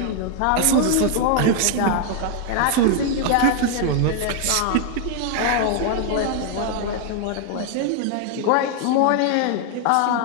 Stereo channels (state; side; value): different; both; correlation 0.00